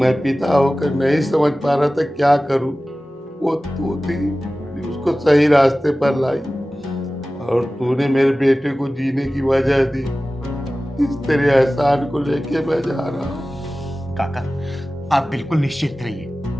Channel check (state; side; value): normal; both; correlation 0.96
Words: पिता होकर नहीं समझ पा रहा था क्या करूं। वो तू थी जो उसको सही रास्ते पर लाई, और तूने मेरे बेटे को जीने की वजह दी। इस तेरे एहसान को लेके मैं जा रहा हूँ। काका आप बिल्कुल निश्चित रहिए,